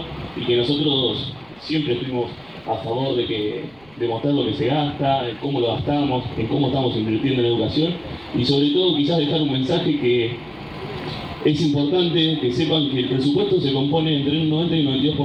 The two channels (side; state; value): right; noise; rumble, 29 dB below the sound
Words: y que nosotros siempre estuvimos a favor de mostrar lo que se gasta, en cómo lo gastamos, en cómo estamos invirtiendo en educación, y sobre todo quizás dejar un mensaje que es importante que sepan que el presupuesto se compone entre un 90 y un